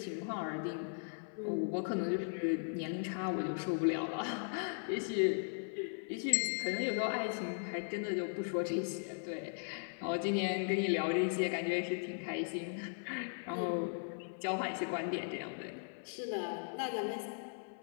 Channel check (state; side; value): silent; right; 52 dB below the other